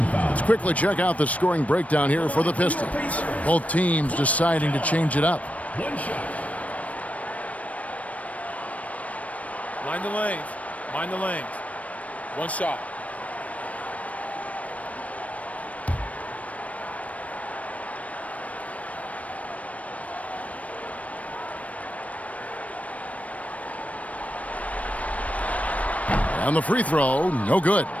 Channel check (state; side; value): late; right; 0.067 ms